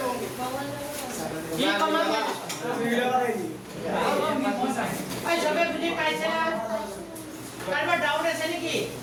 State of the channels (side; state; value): both; identical; correlation 1.00